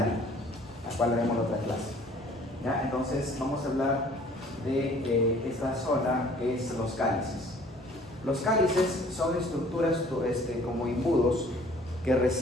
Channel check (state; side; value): normal; both; correlation 0.54